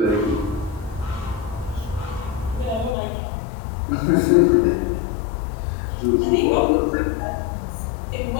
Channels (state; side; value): drops out; right; at 3.0 s